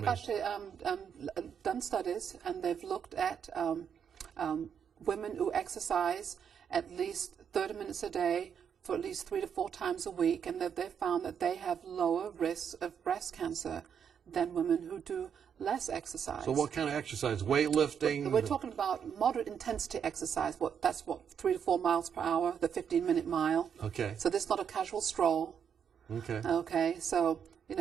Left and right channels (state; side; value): quieter; left; 7.7 dB